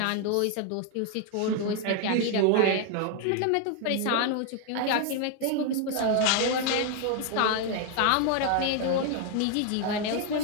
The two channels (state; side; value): different; both; correlation 0.01